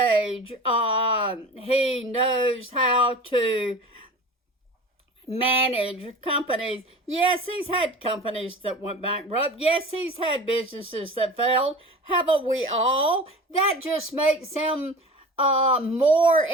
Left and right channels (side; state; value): both; normal; correlation 0.37